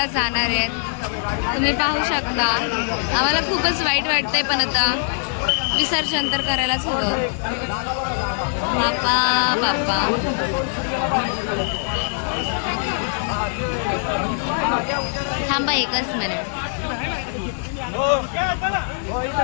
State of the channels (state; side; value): silent; right; digital silence